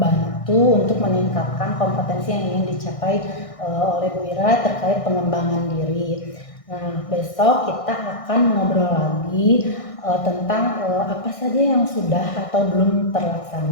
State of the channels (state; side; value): late; right; 1.6 ms